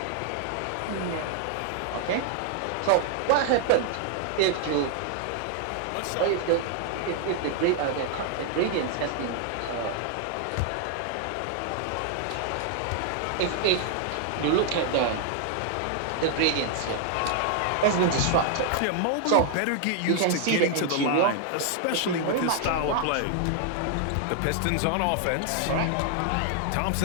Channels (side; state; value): both; different; correlation 0.00